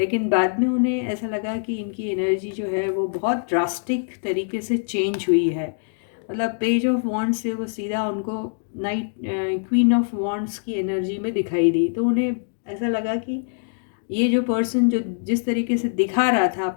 बाद में उन्हें ऐसा लगा कि इनकी एनर्जी जो है वो बहुत ड्रास्टिक तरीके से चेंज हुई है। मतलब पेज ऑफ वॉन्ड्स से वो सीधा उनको नाइट क्वीन ऑफ वॉन्ड्स की एनर्जी में दिखाई दी। तो उन्हें ऐसा लगा कि ये जो पर्सन जो जिस तरीके से दिखा रहा था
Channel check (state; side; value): silent; right; digital silence